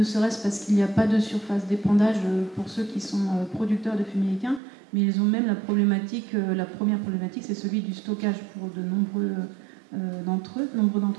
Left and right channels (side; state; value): left; drops out; at 4.6 s